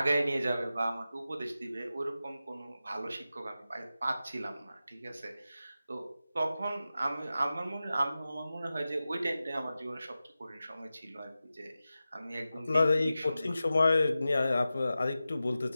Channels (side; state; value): both; inverted; correlation -0.94